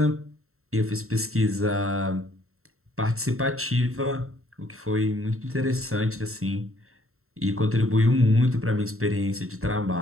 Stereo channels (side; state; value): left; late; 0.62 ms